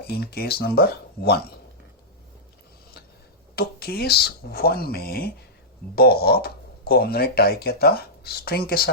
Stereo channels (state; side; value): normal; both; correlation -0.11